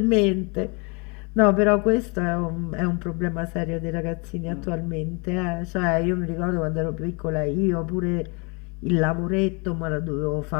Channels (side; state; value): right; quieter; 32.1 dB